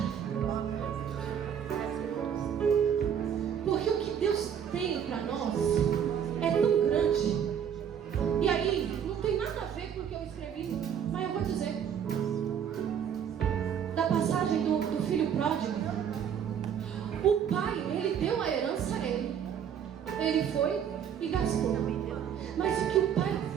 Porque o que Deus tem para nós é tão grande. E aí, não tem nada a ver com o que eu escrevi, mas eu vou dizer. Da passagem do filho pródigo. O pai, ele deu a herança a ele. Ele foi e gastou. Mas o que o pai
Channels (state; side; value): quieter; left; 8.4 dB